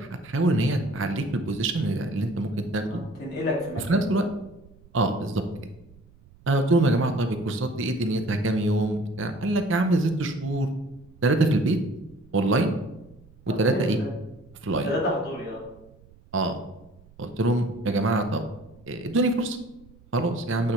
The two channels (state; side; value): noise; right; rumble, 26 dB below the sound